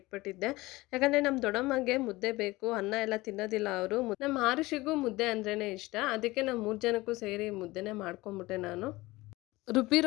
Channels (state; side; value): quieter; right; 20.2 dB